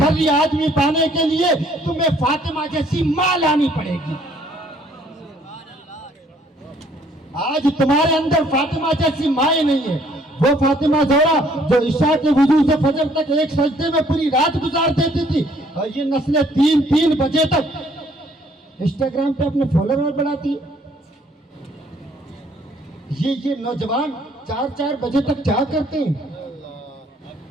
آدمی پانے کے لیے تمہیں فاطمہ جیسی ماں لانی پڑے گی. آج تمہارے اندر فاطمہ جیسی مائیں نہیں ہے. وہ فاطمہ زہرا جو عشاء کے وضو سے فجر تک ایک سجدے میں پوری رات گزار دیتی تھی, اور یہ نسلیں 3 بجے تک انسٹاگرام پہ اپنے فالوور بڑھاتی ہے. یہ نوجوان 4 بجے تک کیا کرتے ہیں,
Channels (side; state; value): both; normal; correlation 0.62